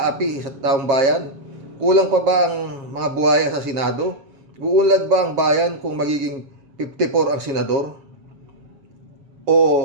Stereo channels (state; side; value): late; left; 7.4 ms